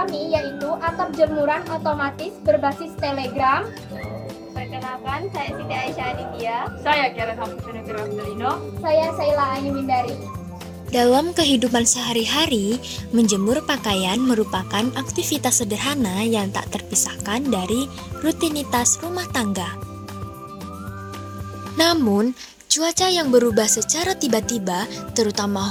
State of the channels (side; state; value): both; identical; correlation 1.00